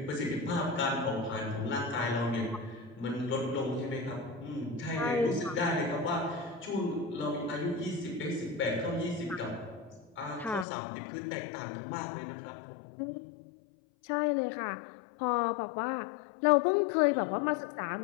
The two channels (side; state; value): right; drops out; at 10.7 s